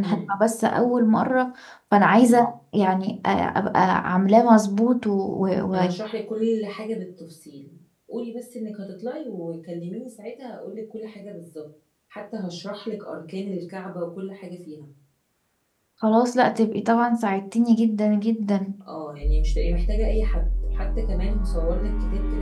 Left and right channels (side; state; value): both; identical; correlation 1.00